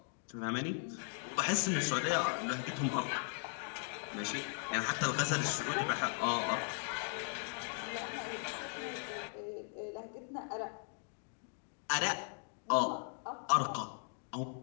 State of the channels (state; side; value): silent; right; 52 dB below the other